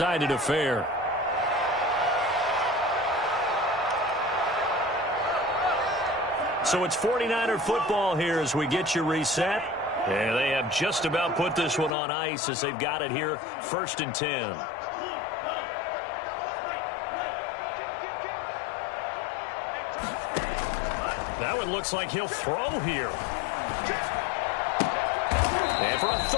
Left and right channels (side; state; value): right; drops out; at 12.0 s